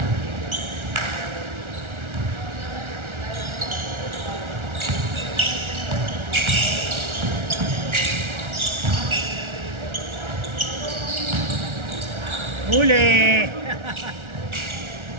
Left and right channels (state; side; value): late; left; 1.4 ms